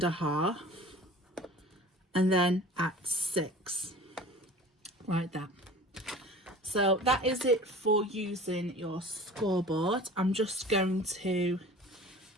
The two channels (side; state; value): both; normal; correlation 0.42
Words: and then at 6, like that. So that is it for using your scoreboard. I'm just going to